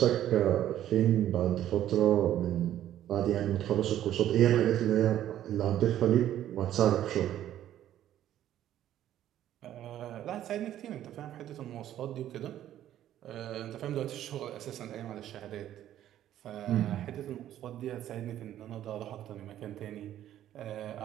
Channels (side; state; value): left; quieter; 12.0 dB